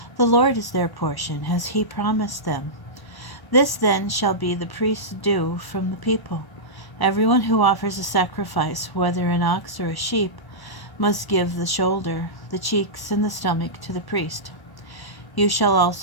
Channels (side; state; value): right; late; 1.0 ms